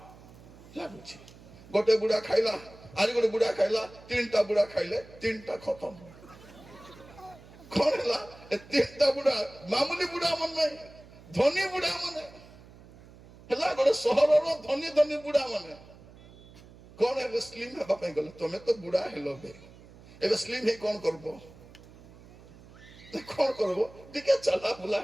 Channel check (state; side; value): noise; right; hum, 21 dB below the sound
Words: ଲାଗୁଛି। ଗୋଟେ ବୁଢା ଖାଇଲା, ଆରି ଗୋଟେ ବୁଢା ଖାଇଲା, ତିନିଟା ବୁଢା ଖାଇଲେ, ତିନିଟା ଖତମ। କ'ଣ ହେଲା? ଏ ତିନିଟା ବୁଢା ମାମୁଲି ବୁଢା ମାନେ ନାହିଁ, ଧନୀ ବୁଢା ମାନେ ହେଲା। ଗୋଟେ ସହରର ଧନୀ ଧନୀ ବୁଢା ମାନେ କ'ଣ ଏବେ ସ୍ଲିମ୍ ହେବା ପାଇଁ ଗଲେ। ତମେ ତ ବୁଢା ହେଲ ବେ, ଏବେ ସ୍ଲିମ୍ ହେଇ କ'ଣ କରିବ? କ'ଣ କରିବ? ଟିକେ ଚାଲା ବୁଲା